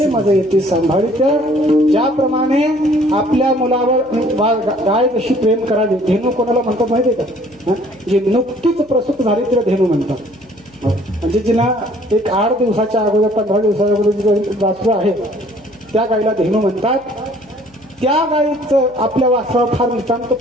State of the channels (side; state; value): left; noise; hum, 28 dB below the sound